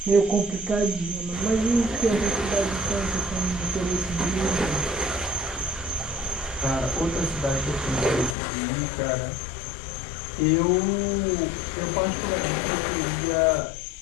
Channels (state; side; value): drops out; right; at 8.3 s